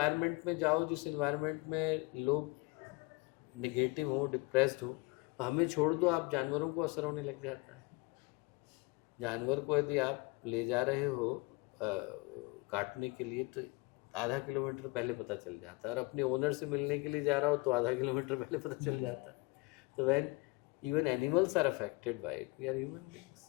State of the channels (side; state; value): right; quieter; 26.0 dB